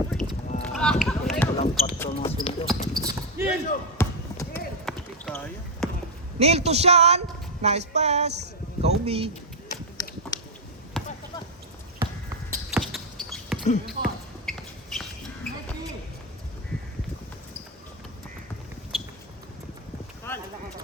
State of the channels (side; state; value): both; normal; correlation 0.03